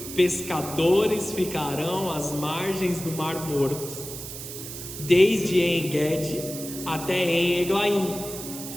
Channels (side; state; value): right; noise; hiss, 10 dB below the sound